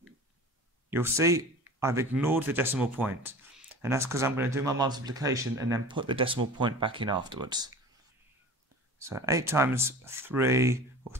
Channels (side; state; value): both; normal; correlation 0.38